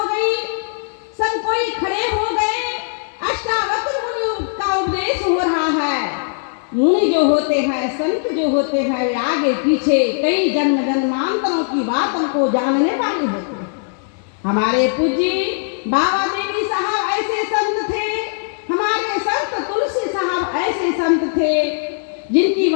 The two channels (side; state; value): right; silent; digital silence